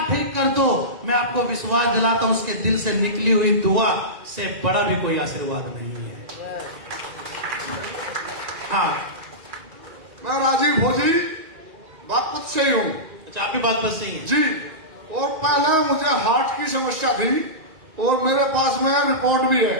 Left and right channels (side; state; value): left; late; 2.4 ms